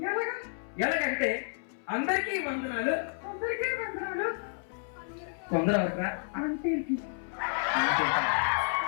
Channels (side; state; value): right; silent; 57 dB below the other